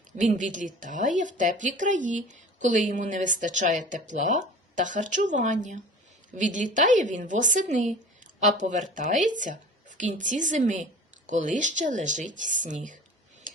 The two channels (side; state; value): both; normal; correlation 0.40